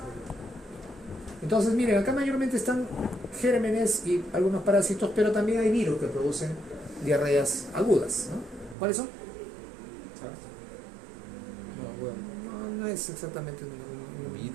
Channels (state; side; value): drops out; left; at 8.8 s